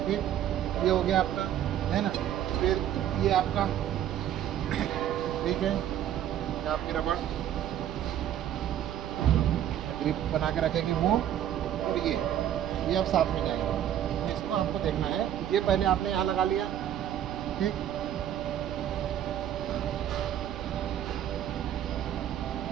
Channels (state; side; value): quieter; left; 10.8 dB